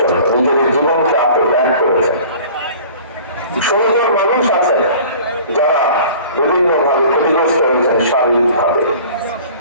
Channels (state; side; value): inverted; both; correlation -0.45